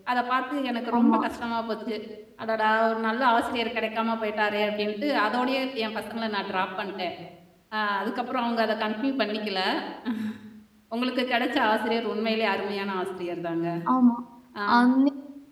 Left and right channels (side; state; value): both; identical; correlation 1.00